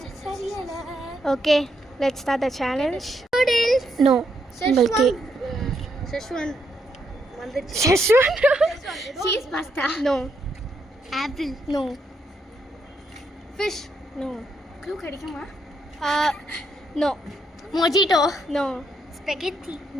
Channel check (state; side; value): normal; both; correlation 0.77